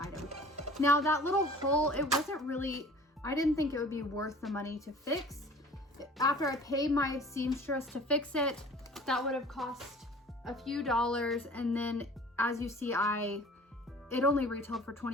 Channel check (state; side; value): normal; both; correlation 0.47